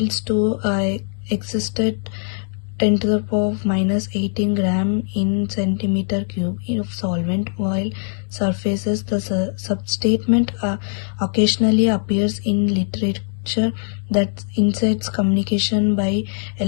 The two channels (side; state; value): right; silent; 56 dB below the other